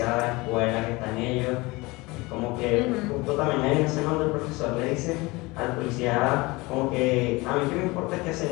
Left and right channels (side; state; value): right; quieter; 23.2 dB